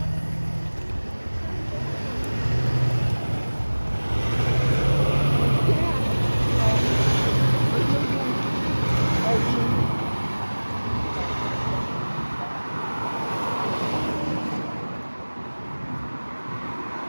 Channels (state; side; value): inverted; both; correlation -1.00